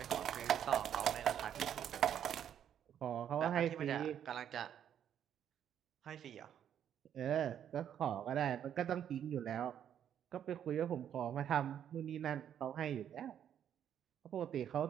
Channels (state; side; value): quieter; left; 9.5 dB